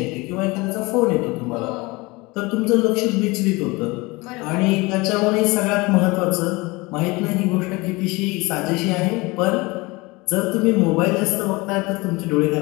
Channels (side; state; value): right; quieter; 23.8 dB